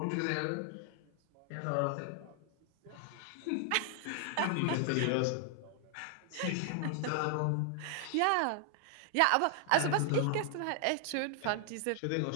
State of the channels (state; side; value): different; both; correlation 0.00